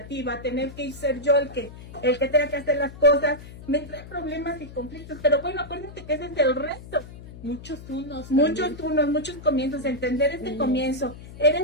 tener que ser yo el que tenga que hacer las cosas, me trae problemas y conflictos, pero bueno, acuérdense que ese es el resto. Muchos unos, muchos comienzos, entender este comienzo.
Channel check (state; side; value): noise; left; hum, 15 dB below the sound